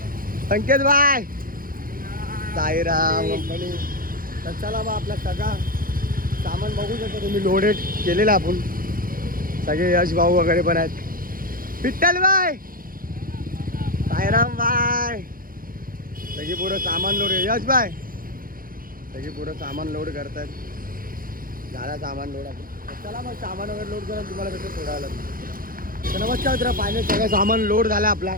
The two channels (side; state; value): left; late; 0.41 ms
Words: संकेत भाई साईराम कंपनी. तर चला मग आपला सगळा सामान बघू शकता तुम्ही, लोडेड केलेला आपण. सगळे यश भाऊ वगैरे पण आहेत. विठ्ठल बाय, साईराम बाय, सगळी पुरं सामान लोड. यश बाय सगळी पुरं सामान लोड करतात. झाला सामान लोड आपण. चला मग सामान वगैरे लोड करून तुम्हाला कसं सोडायला. तर नमस्कार मित्र, फायनल सगळं सामान लोड झालं आपला.